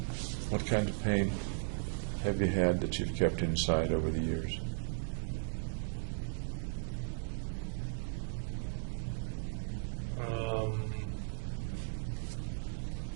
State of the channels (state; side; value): silent; left; digital silence